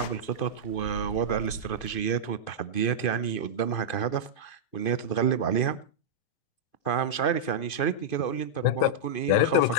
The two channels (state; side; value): late; right; 2.5 ms